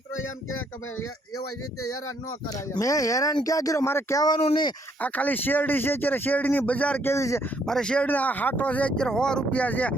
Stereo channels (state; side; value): normal; both; correlation 0.69